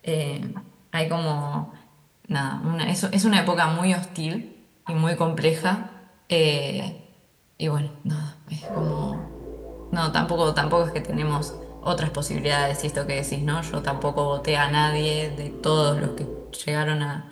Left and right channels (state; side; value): identical; both; correlation 1.00